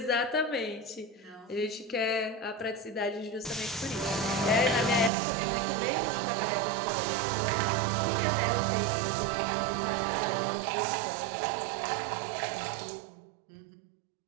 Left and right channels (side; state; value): left; drops out; at 5.1 s